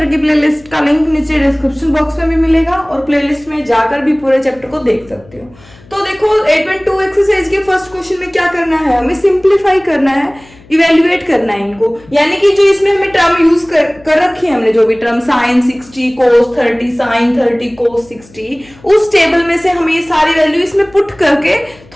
की प्लेलिस्ट का लिंक नीचे डिस्क्रिप्शन बॉक्स में भी मिलेगा और प्लेलिस्ट में जाकर भी पूरे चैप्टर को देख सकते हो। तो देखो 8.2 एक्सरसाइज के फर्स्ट क्वेश्चन में क्या करना है, हमें सिंप्लीफाई करना है, इवेल्युएट करना है इनको, यानी कि जो इसमें हमने टर्म यूज कर रखी है, हमने जो भी term sin 60 cos 30 sin 30 cos 60, उस टेबल में से हमें ये सारी वैल्यू इसमें पुट करके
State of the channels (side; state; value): left; noise; hum, 25 dB below the sound